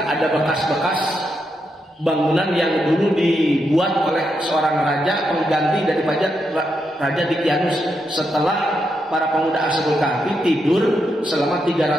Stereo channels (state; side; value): normal; both; correlation 0.82